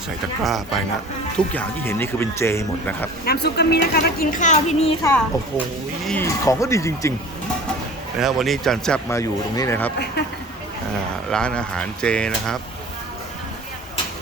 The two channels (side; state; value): both; normal; correlation 0.42